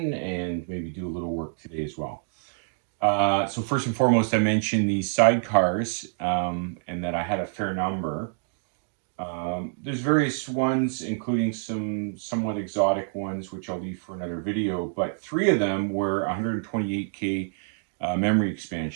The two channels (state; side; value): silent; left; digital silence